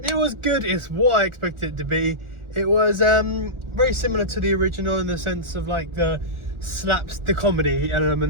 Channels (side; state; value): left; late; 1.4 ms